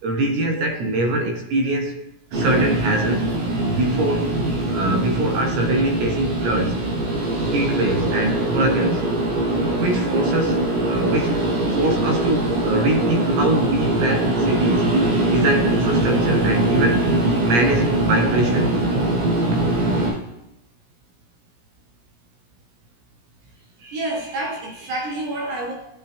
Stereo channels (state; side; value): late; left; 17 ms